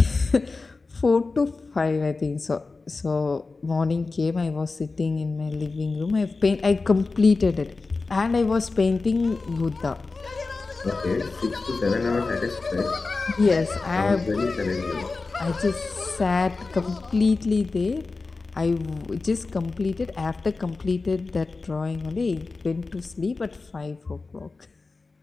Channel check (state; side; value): quieter; right; 3.9 dB